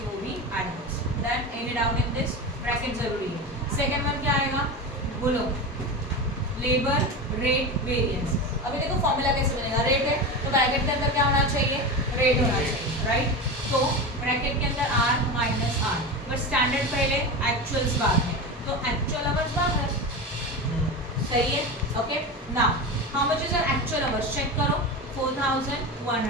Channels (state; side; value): normal; both; correlation 0.24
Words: वो भी adverse, that ended out in this bracket जरूरी है। सेकंड वन क्या आएगा, बोलो लेबर रेट वेरिएंस। अभी देखो फॉर्मूला कैसे बनेगा, रेट है तो ब्रैकेट के अंदर क्या होना चाहिए, रेट होना चाहिए, राइट, तो ब्रैकेट के अंदर R minus R, but standard पहले एक्चुअल्स बाद में, तो एक्चुअल आवर्स बाहर, सही है. Okay, now how much is your actual hours? Check करो.